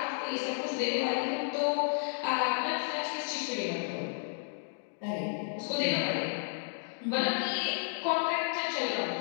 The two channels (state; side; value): silent; right; digital silence